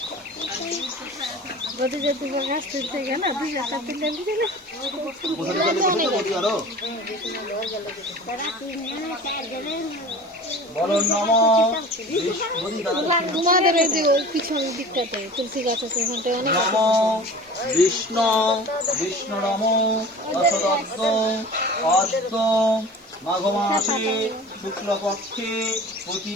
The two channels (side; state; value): both; normal; correlation 0.39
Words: বলতে যে তুমি গাছ তুলতে গেলে দুই একটা তুলে দিলে বলো নমো তোমাদের এই যে ওই পিছন দিকটাতে তুলসী গাছ আছে ওখানটায় অনেক নমো বিষ্ণু বিষ্ণু নমো দশদত্ত অদ্য মাঘ মাসে শুক্লপক্ষে